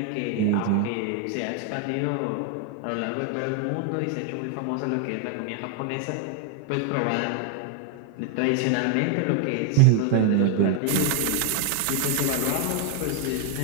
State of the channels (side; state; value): both; different; correlation 0.01